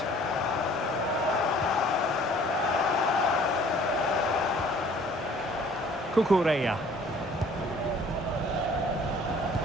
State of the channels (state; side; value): normal; both; correlation 0.53